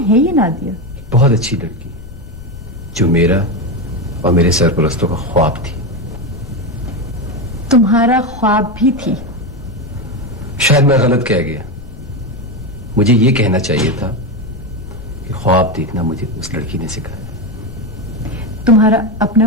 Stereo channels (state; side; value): noise; left; rumble, 16 dB below the sound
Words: है ये नादिया? बहुत अच्छी लड़की, जो मेरा और मेरे सरपरस्तों का ख्वाब थी। तुम्हारा ख्वाब भी थी? शायद मैं गलत कह गया। मुझे यह कहना चाहिए था कि ख्वाब देखना मुझे उस लड़की ने सिखाया। तुम्हारा